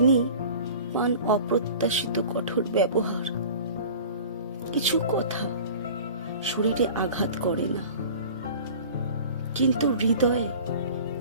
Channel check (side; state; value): both; inverted; correlation -0.41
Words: পান অপ্রত্যাশিত কঠোর ব্যবহার। কিছু কথা শরীরে আঘাত করে না, কিন্তু হৃদয়ে